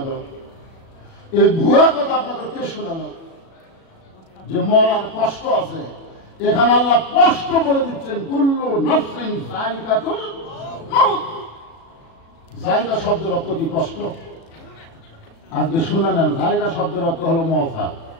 এই ভুয়া কথা আপনাদের কে শোনালো যে মরার কষ্ট আছে? এখানে আল্লাহ কষ্ট বলে দিচ্ছেন কুল্লু নাফসিন যায়কাতুল মাউত। জায়গা শব্দের অর্থ কি? কষ্ট। আজকে শুনে নেন, জায়গা শব্দের অর্থ হলো মজা,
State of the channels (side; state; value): right; late; 36 ms